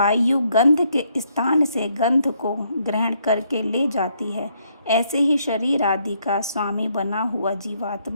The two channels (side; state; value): both; inverted; correlation -0.72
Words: गंध के स्थान से गंध को ग्रहण करके ले जाती है, ऐसे ही शरीर आदि का स्वामी बना हुआ